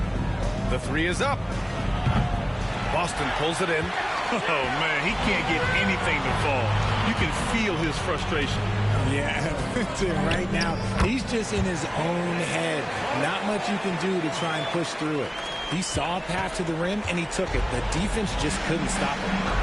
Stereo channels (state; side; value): identical; both; correlation 1.00